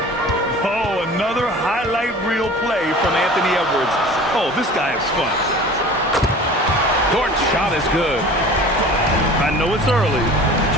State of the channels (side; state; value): both; normal; correlation 0.42